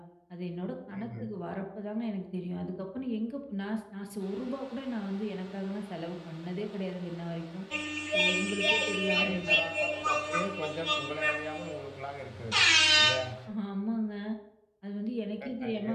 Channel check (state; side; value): identical; both; correlation 1.00